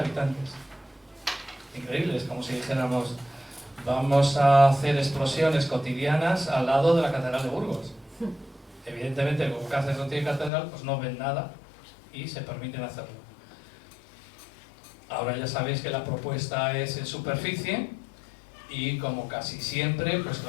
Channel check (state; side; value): drops out; right; at 10.5 s